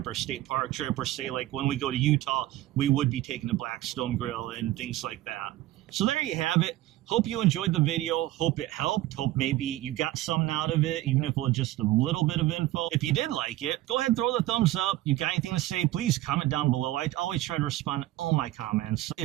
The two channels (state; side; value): quieter; left; 15.6 dB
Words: or state park trip, or say like when we go to Utah, we would be taking the Blackstone grill and things like that. So there you have it. Hope you enjoyed the video. Hope it helped. Hope maybe you got something out of it, even if it was just a little bit of info. If you did like it, go ahead and throw the thumbs up. You got anything to say, please comment down below. I always try to respond to all my comments.